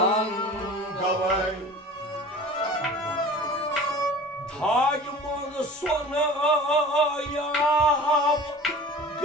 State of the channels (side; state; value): both; normal; correlation 0.41